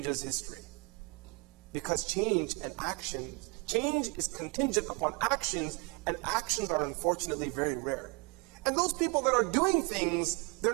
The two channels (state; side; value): quieter; left; 30.5 dB